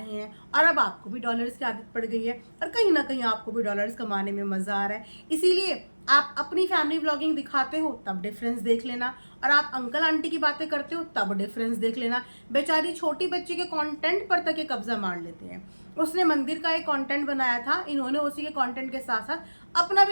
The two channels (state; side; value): inverted; both; correlation -1.00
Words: हैं और अब आपको भी डॉलर्स की आदत पड़ गई है और कहीं ना कहीं आपको भी डॉलर्स कमाने में मज़ा आ रहा है। इसीलिए आप अपनी फैमिली व्लॉगिंग दिखाते हो तब डिफरेंस देख लेना, और आप अंकल आंटी की बातें करते हो तब डिफरेंस देख लेना। बेचारी छोटी बच्ची के कंटेंट पर तक ये कब्जा मार लेते हैं। उसने मंदिर का एक कंटेंट बनाया था, इन्होंने उसी के कंटेंट के साथ साथ अपना